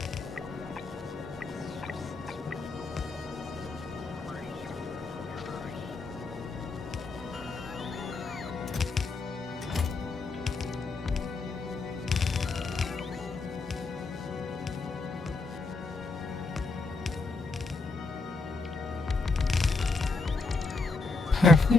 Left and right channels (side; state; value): right; quieter; 3.6 dB